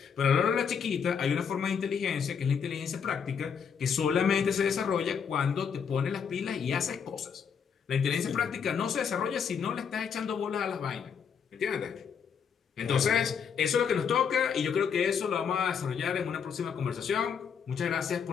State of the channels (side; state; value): right; quieter; 6.9 dB